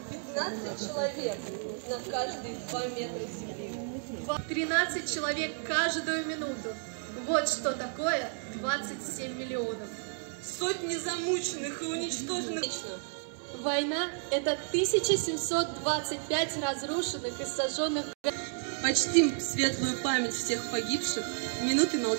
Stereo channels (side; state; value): left; silent; 57 dB below the other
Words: 15 человек на каждые 2 метра земли. 13 человек каждую минуту. Вот что такое 27 миллионов. Сотни замученных и уничтоженных. Война – это 1725 разрушенных и сожженных. Почтим светлую память всех погибших в минуты